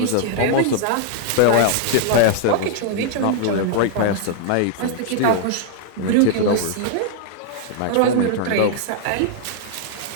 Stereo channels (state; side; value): different; both; correlation -0.01